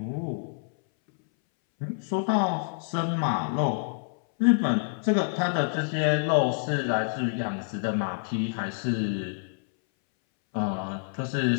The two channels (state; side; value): silent; right; 60 dB below the other